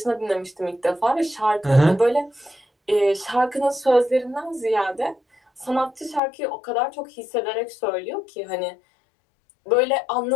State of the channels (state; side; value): drops out; right; at 6.2 s